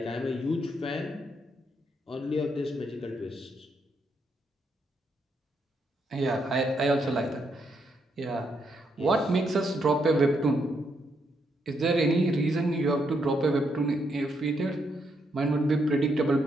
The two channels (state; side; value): normal; both; correlation 0.77